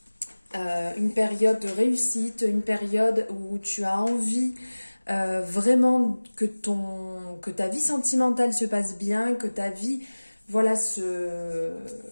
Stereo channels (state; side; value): inverted; both; correlation -1.00